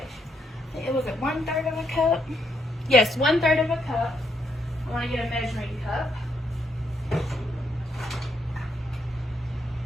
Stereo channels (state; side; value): normal; both; correlation 0.76